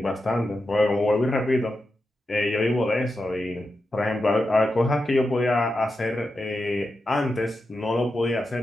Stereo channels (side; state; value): both; normal; correlation 0.89